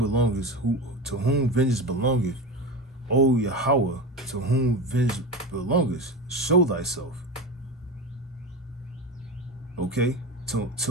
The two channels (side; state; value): both; normal; correlation 0.24